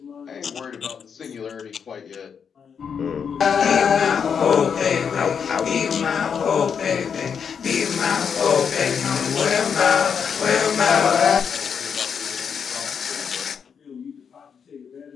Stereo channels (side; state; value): right; quieter; 6.9 dB